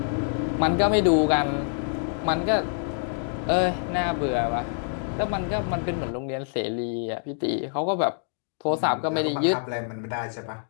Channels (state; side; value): silent; right; digital silence